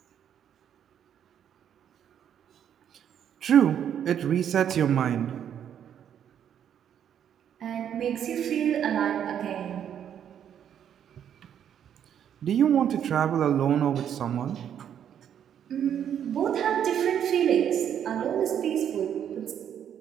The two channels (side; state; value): left; quieter; 9.2 dB